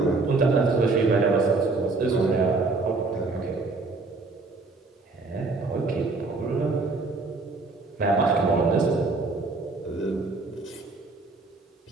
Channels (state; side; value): quieter; left; 3.7 dB